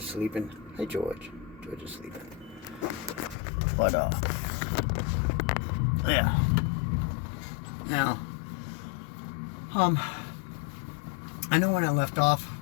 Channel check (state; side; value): drops out; right; at 3.4 s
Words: sleeping. Hi, George. George is sleeping. But, yeah. Now, I know when I left off